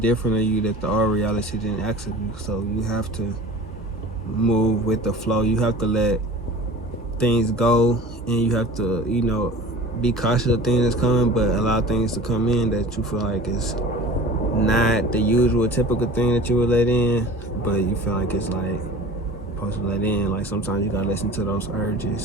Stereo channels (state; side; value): normal; both; correlation 0.40